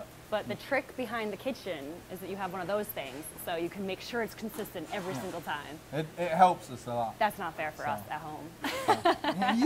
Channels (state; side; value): identical; both; correlation 1.00